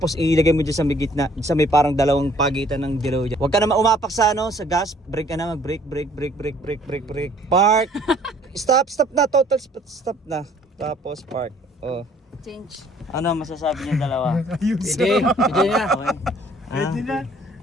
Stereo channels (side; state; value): both; normal; correlation 0.58